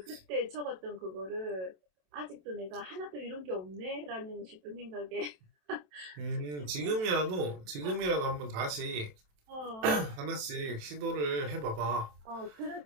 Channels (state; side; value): late; left; 27 ms